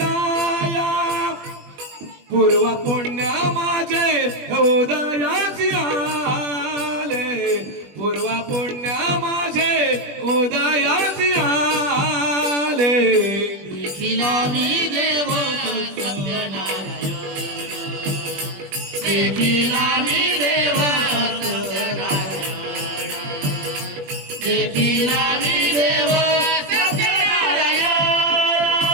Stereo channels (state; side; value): late; left; 21 ms